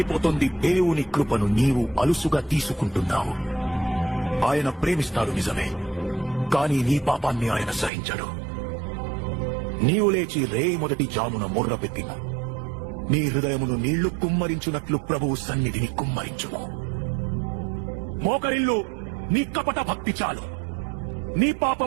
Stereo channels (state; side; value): drops out; left; at 7.9 s